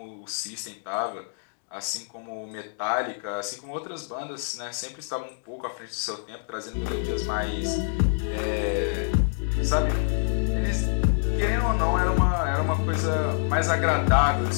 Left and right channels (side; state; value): right; silent; 61 dB below the other